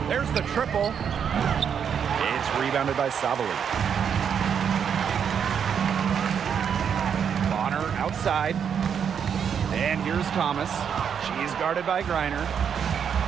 There's the triple. It's rebounded by Sabali. Bonner outside. And here's Thomas. She's guarded by Griner.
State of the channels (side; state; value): left; quieter; 7.6 dB